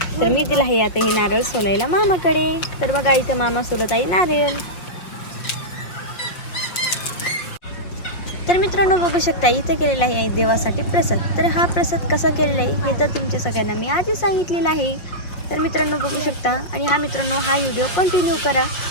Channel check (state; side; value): late; right; 5.6 ms